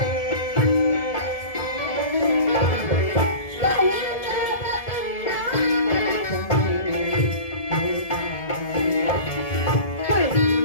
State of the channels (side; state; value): right; late; 1.7 ms